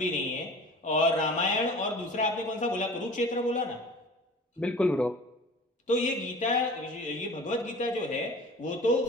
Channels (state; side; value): normal; both; correlation 0.42